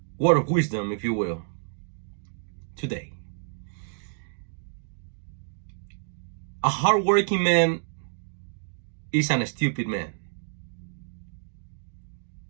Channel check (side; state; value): left; silent; digital silence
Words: word of wisdom, if you will, today. A hardworking man isn't a stupid man.